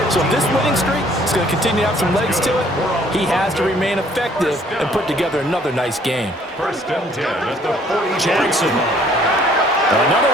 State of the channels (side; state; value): both; normal; correlation 0.60